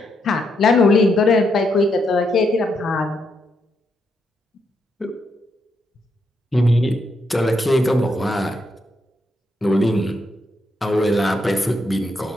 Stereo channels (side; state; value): both; normal; correlation 0.79